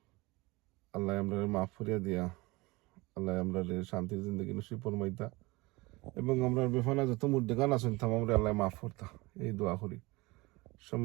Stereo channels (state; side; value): quieter; left; 23.1 dB